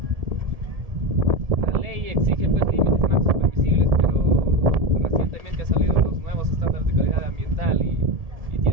La ley exige pues límites máximos permisibles, pero recientemente han salido los nuevos estándares de calidad ambiental y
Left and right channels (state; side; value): late; left; 1.7 ms